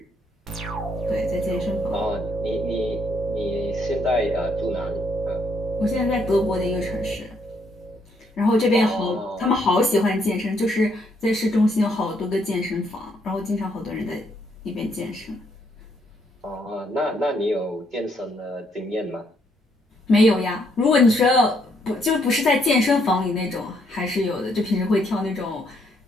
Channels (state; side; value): normal; both; correlation 0.72